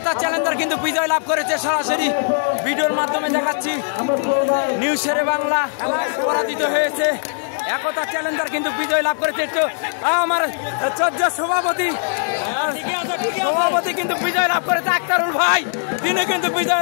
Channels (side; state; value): right; silent; 66 dB below the other